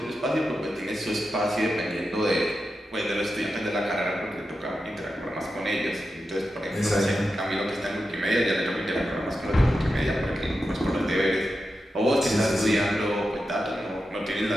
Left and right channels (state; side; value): normal; both; correlation 0.90